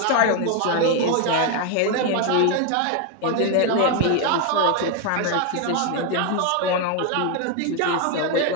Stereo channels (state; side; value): different; both; correlation 0.01